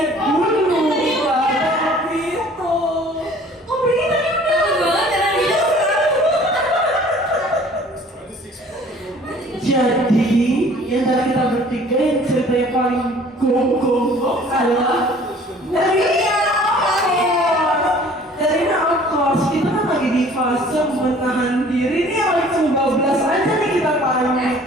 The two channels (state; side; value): normal; both; correlation 0.51